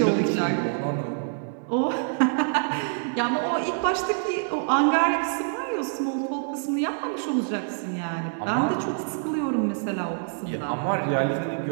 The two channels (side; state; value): left; silent; digital silence